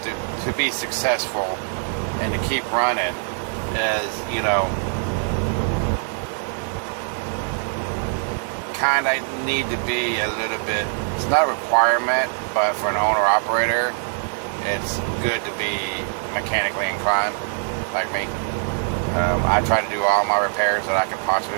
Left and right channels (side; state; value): left; silent; 56 dB below the other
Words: to be successful and to keep running, is, you know, kind of need to be a little bit, it's not a requirement, but for an owner-operator, it's good to be mechanically inclined, like me. I try to do all my repairs that I can